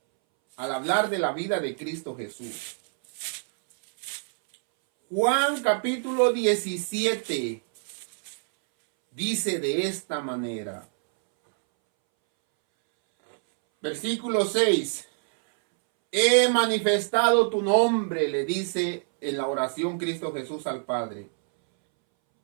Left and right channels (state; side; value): silent; left; 61 dB below the other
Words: al hablar de la vida de Cristo Jesús. Juan capítulo 17 dice de esta manera. Versículo 6. He manifestado tu nombre, le dice en la oración Cristo Jesús al Padre.